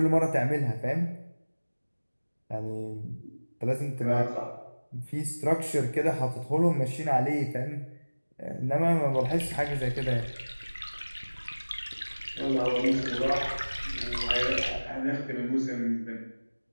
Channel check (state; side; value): inverted; both; correlation -1.00